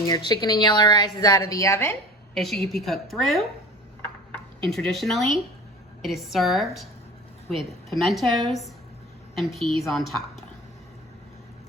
your chicken and yellow rice is out of the oven, it should be cooked through. And traditionally, it is served with pimentos and peas on top.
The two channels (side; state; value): both; normal; correlation 0.38